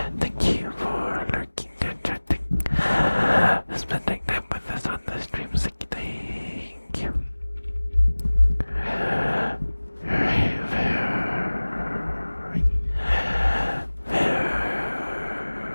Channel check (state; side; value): inverted; both; correlation -1.00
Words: Thank you for lurking and chatting. Spending time with us on the stream. Thank you. Very,